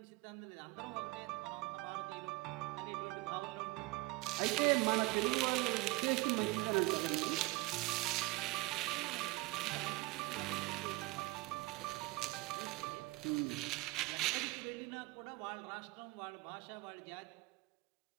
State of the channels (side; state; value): left; quieter; 22.5 dB